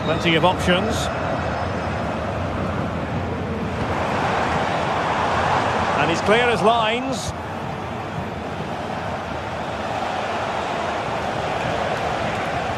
Plenty of options. And he's clear as lines.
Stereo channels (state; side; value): identical; both; correlation 1.00